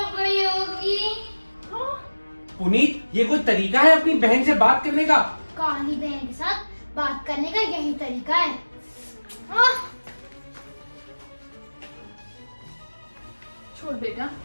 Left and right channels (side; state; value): both; inverted; correlation -1.00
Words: गई होगी। पुनीत ये कोई तरीका है अपनी बहन से बात करने का? काली बहन के साथ बात करने का यही तरीका है। आह! छोड़ बेटा,